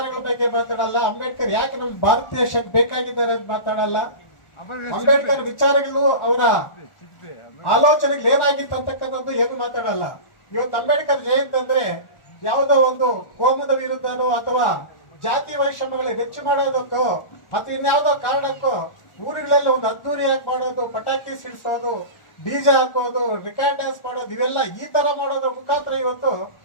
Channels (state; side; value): late; right; 1.4 ms